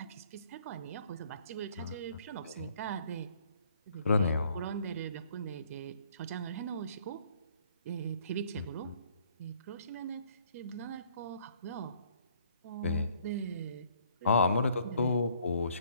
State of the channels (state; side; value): inverted; both; correlation -0.61